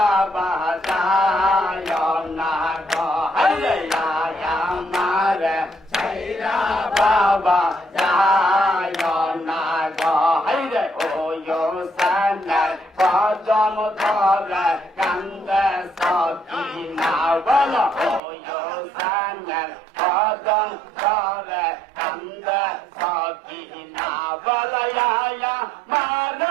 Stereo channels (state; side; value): drops out; left; at 18.2 s